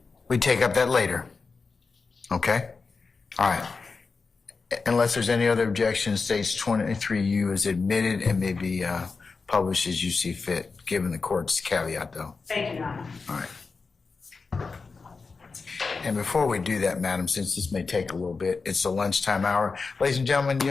We take up that later. Okay? All right. Unless there's any other objection, states 23U is admitted and may be published as you see fit, given the court's caveat, though. Thank you, Your Honor. All right. And before we do that, madam, since this may take a little bit, it's the lunchtime hour. Ladies and gentlemen, you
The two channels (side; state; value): right; quieter; 4.5 dB